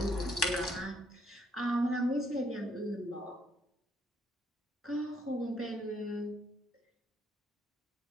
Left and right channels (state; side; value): normal; both; correlation 0.69